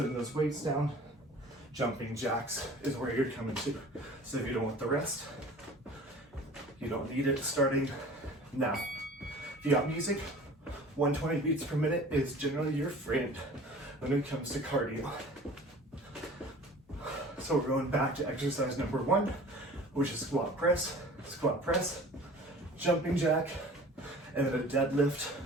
those weights down. Jumping jacks is where you're coming to. So if you don't want the rest, you don't need it, starting now. If you got music, 120 beats per minute is generally your friend when it comes to cardio. So we're going back to exercise number 1, which is squat press, jumping jack, and then a deadlift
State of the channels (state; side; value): normal; both; correlation 0.45